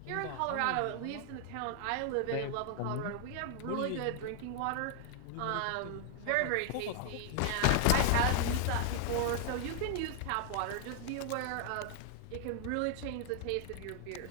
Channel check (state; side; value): different; both; correlation 0.00